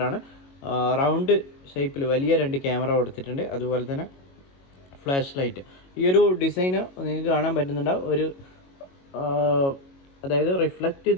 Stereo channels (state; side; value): late; right; 22 ms